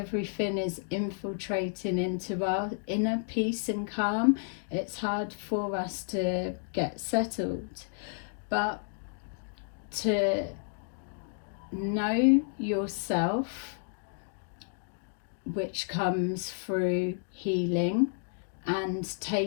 is infiltrating into our inner peace and calm. It's hard for us to get settled. But to know yourself, which comes through healing and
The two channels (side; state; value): right; silent; digital silence